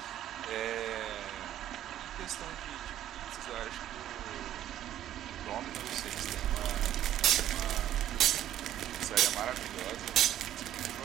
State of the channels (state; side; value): quieter; left; 11.9 dB